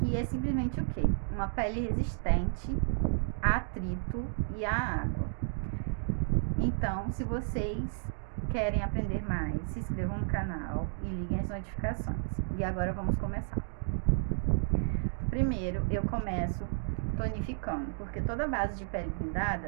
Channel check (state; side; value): silent; left; digital silence